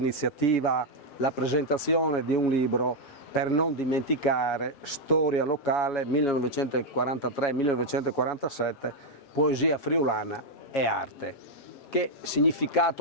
la presentazione di un libro per non dimenticare, storia locale 1943-1947, poesia friulana e arte. Che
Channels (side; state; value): right; late; 7.3 ms